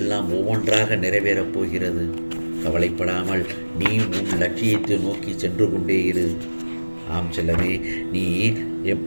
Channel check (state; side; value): inverted; both; correlation -1.00